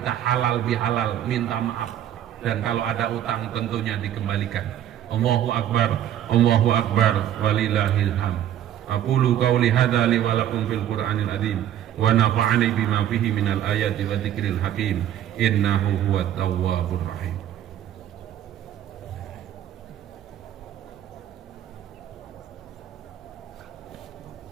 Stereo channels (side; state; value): left; quieter; 11.1 dB